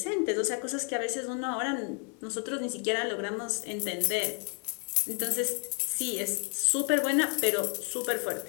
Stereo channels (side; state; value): right; quieter; 35.6 dB